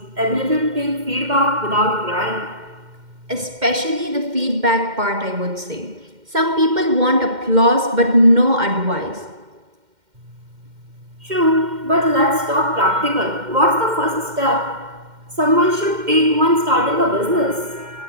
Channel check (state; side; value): late; left; 2.1 ms